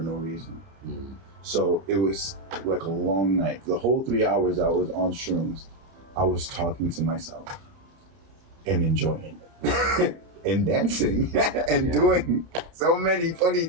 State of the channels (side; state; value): left; late; 30 ms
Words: reason. So it was like a long night. The whole 3 hours I was on shrooms, I was talking to myself and enjoying it. And dancing and doing so many funny